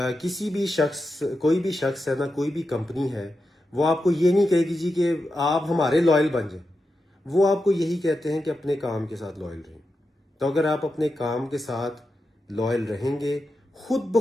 کسی بھی شخص, کوئی بھی شخص ہے نا, کوئی بھی کمپنی ہے, وہ آپ کو یہ نہیں کہے گی جی کہ آپ ہمارے لائل بن جائیں. وہ آپ کو یہی کہتے ہیں کہ اپنے کام کے ساتھ لائل رہیں. تو اگر آپ اپنے کام کے ساتھ لائل رہیں گے, خود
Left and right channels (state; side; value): normal; both; correlation 0.89